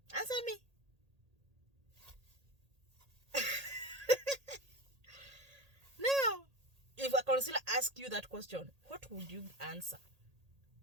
Answer me. Now, if a consular asks you that question, what would you answer?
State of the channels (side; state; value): left; late; 1.8 ms